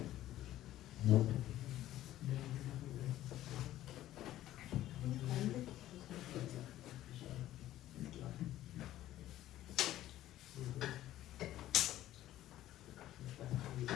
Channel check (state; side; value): quieter; right; 13.9 dB